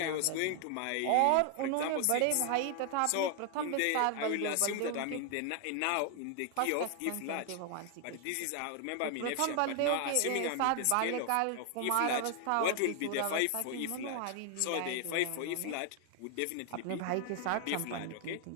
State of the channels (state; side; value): different; both; correlation 0.00